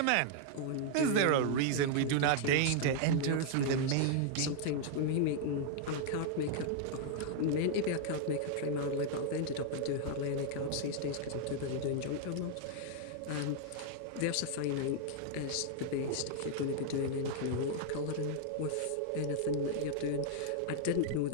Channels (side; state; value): both; different; correlation 0.00